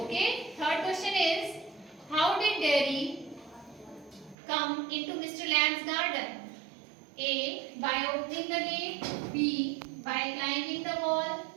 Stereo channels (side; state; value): left; drops out; at 4.4 s